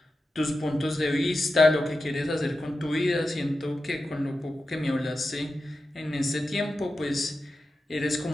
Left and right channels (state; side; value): normal; both; correlation 0.91